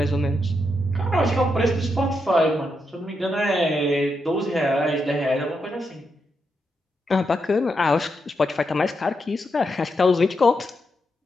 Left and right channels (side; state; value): both; normal; correlation 0.83